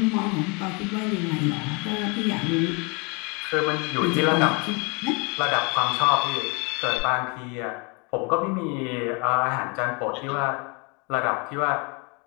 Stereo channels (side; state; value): right; quieter; 30.8 dB